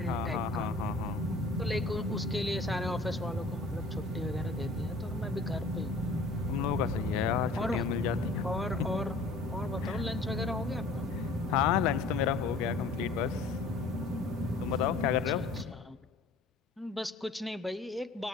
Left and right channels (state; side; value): quieter; right; 3.2 dB